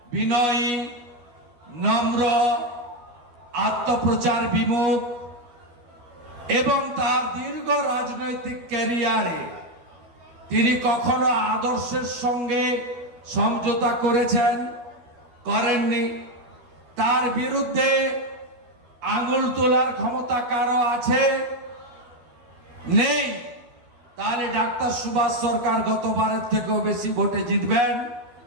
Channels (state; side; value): late; left; 12 ms